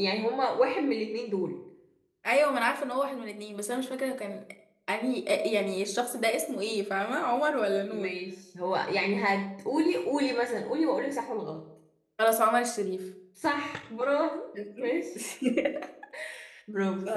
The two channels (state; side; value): identical; both; correlation 1.00